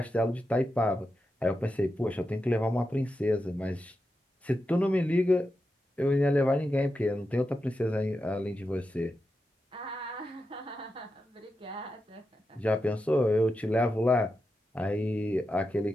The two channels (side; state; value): both; normal; correlation 0.89